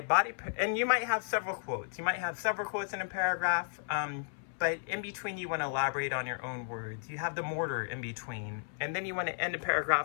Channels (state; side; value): silent; right; 55 dB below the other